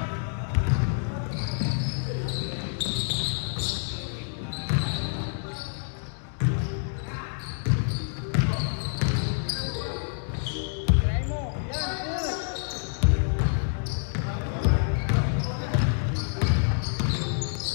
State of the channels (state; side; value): silent; right; digital silence